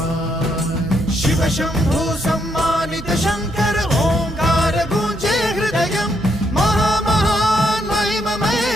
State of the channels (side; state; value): right; noise; hum, 13 dB below the sound